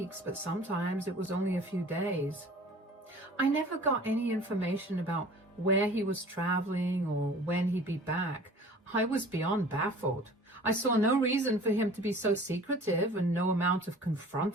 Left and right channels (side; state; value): both; normal; correlation 0.46